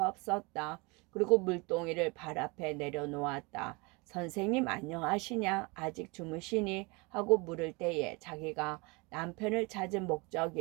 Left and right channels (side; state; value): left; quieter; 27.6 dB